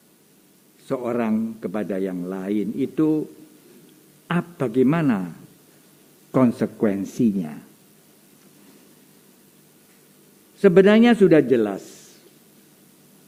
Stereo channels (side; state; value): both; identical; correlation 1.00